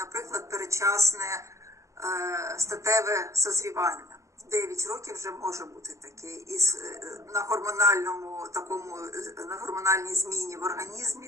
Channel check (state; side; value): late; left; 0.15 ms